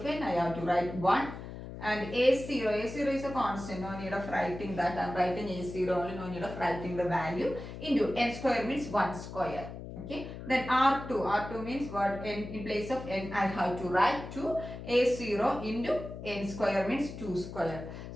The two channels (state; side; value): noise; left; hum, 10 dB below the sound